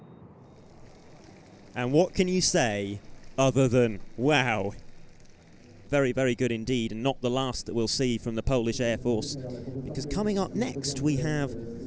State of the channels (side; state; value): both; identical; correlation 1.00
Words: And what can you say other than, wow? Very, very good indeed, and not the last that we'll see from the Polish Air Force, because coming up next we have